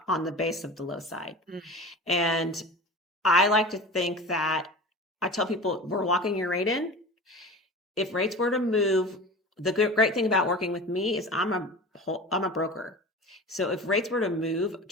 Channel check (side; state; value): both; normal; correlation 0.34